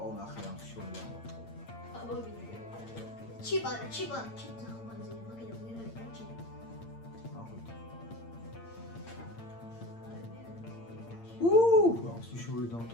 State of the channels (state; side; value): late; right; 8.8 ms